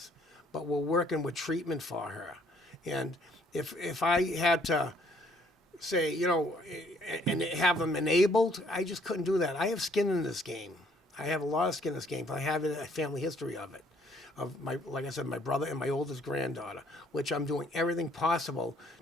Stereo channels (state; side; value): normal; both; correlation 0.63